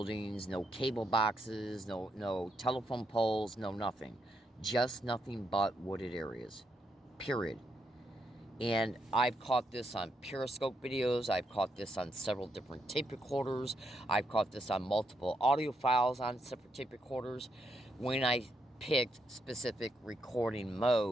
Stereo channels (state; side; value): normal; both; correlation 0.79